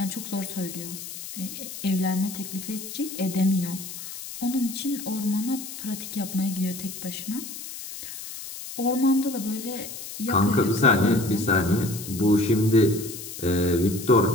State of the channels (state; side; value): noise; left; hiss, 10 dB below the sound